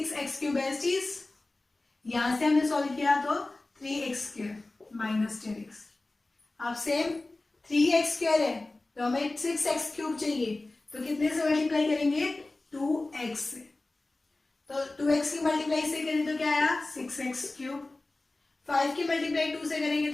बेस्टीज, यहां से हमने सॉल्व किया तो 3x² माइनस 10x। अब सेम 3x² है तो हमें 6x³ चाहिए, तो कितने से मल्टीप्लाई करेंगे? 2x से, तो 2x की मल्टीप्लाई से करें तो क्या आया? 6x³। 5 की मल्टीप्लाई 2 से करेंगे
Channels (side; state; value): right; quieter; 3.0 dB